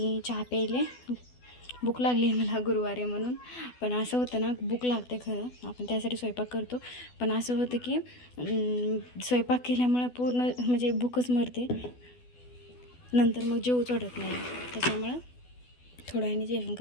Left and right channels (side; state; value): right; late; 12 ms